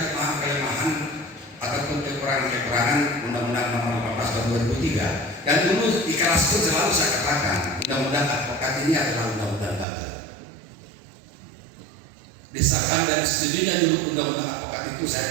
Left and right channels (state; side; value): drops out; left; at 9.9 s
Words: ataupun kekurangan-kekurangan Undang-Undang Nomor 18 Tahun 2003 Dan dulu di kelas pun selalu saya katakan, undang-undang advokat ini adalah undang-undang gagal. Disahkan dan setujunya dulu undang-undang advokat itu saya